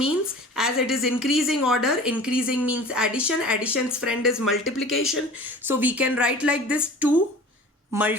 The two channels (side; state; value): both; normal; correlation 0.42